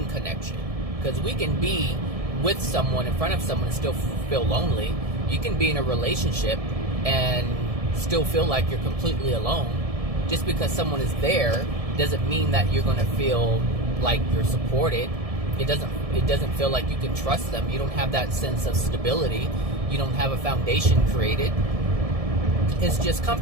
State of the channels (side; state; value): left; late; 1.7 ms